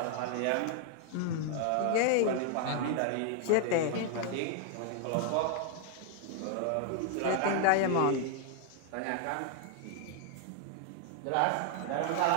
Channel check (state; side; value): different; both; correlation 0.00